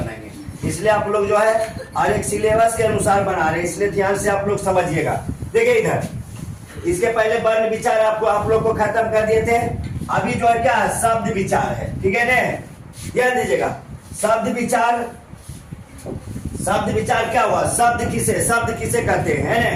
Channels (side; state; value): both; identical; correlation 1.00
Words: बनाएंगे। इसलिए आप लोग जो है हर एक सिलेबस के अनुसार बना रहे हैं, इसलिए ध्यान से आप लोग समझिएगा। देखिए इधर, इसके पहले वर्ण विचार आप लोग को खत्म कर दिए थे। अभी जो है क्या शब्द विचार है। ठीक है ने, ध्यान दीजिएगा। शब्द विचार क्या हुआ? शब्द किसे कहते हैं,